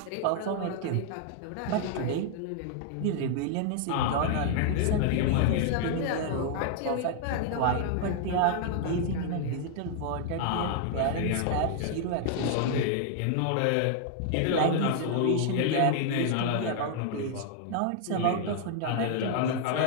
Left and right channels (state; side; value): different; both; correlation 0.00